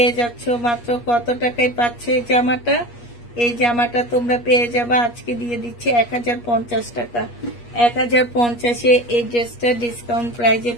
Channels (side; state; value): right; late; 8.4 ms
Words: যাচ্ছ মাত্র কত টাকায় পাচ্ছ এই জামাটা? এই জামাটা তোমরা পেয়ে যাবা, আজকে দিয়ে দিচ্ছি 1050 টাকা। 1050-এ এই ড্রেসটা ডিসকাউন্ট প্রাইজে